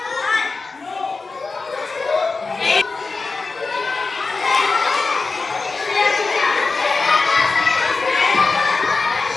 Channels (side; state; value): right; quieter; 4.0 dB